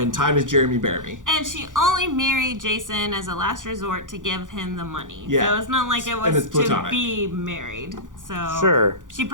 time is Jeremy Bearimy. And she only married Jason as a last resort to give him the money. Yeah. So it's not like it And was it's to platonic. be married. So Sure. she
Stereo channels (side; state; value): left; late; 0.88 ms